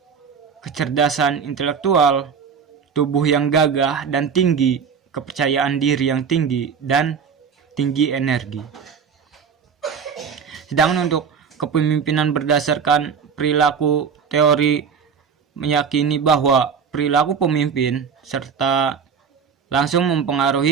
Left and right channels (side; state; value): left; quieter; 6.5 dB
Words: kecerdasan intelektual, tubuh yang gagah dan tinggi, kepercayaan diri yang tinggi, dan tinggi energi. Sedangkan untuk kepemimpinan berdasarkan perilaku, teori meyakini bahwa perilaku pemimpin serta langsung